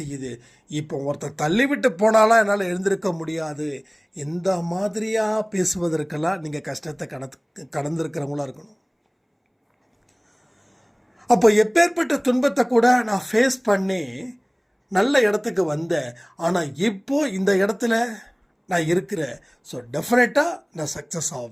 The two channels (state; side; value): identical; both; correlation 1.00